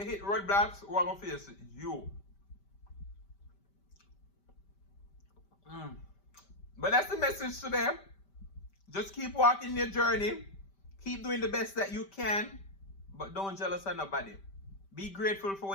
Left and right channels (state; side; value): late; right; 5.1 ms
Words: roadblocks, who are going to face it? You. But that's the message today. Just keep walking your journey. Keep doing the best that you can. But don't jealous of nobody. Be grateful for